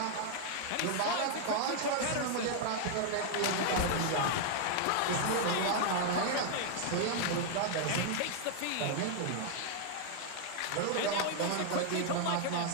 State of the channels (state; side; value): different; both; correlation 0.00